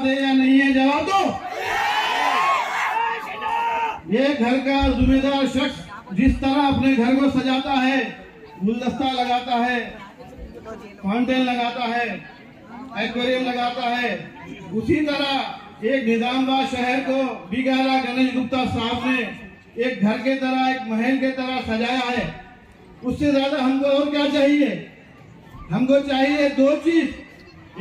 है या नहीं है, जवाब दो। ये घर का जिम्मेदार शख्स जिस तरह अपने घर को सजाता है, गुलदस्ता लगाता है, फाउंटेन लगाता है, एक्वेरियम लगाता है, उसी तरह एक निजामाबाद शहर को बिगाला गणेश गुप्ता साहब ने एक घर के तरह एक महल के तरह सजाया है। उससे ज्यादा हमको और क्या चाहिए? हमको चाहिए दो चीज,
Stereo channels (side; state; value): both; identical; correlation 1.00